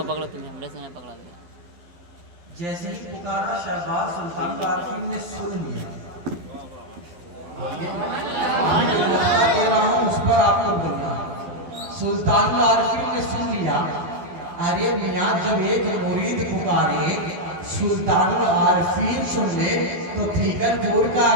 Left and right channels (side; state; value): left; late; 12 ms